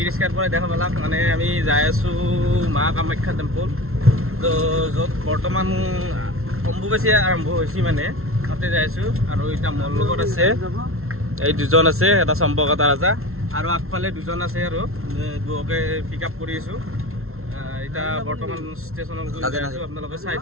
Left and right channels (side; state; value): left; late; 0.62 ms